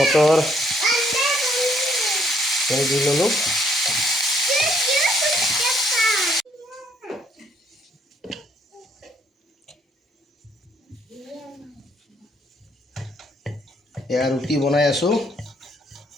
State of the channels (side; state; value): both; normal; correlation 0.68